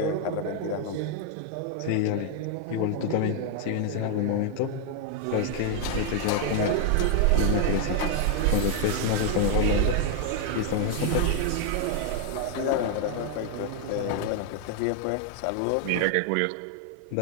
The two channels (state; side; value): different; both; correlation 0.00